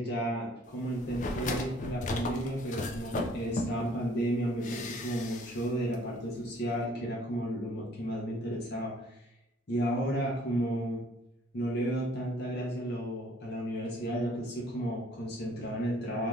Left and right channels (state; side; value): normal; both; correlation 0.59